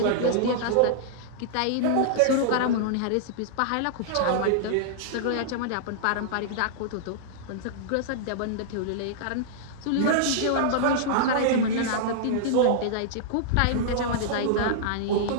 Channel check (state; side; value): different; both; correlation -0.02